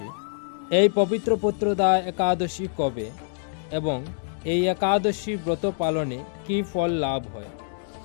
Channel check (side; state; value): right; silent; digital silence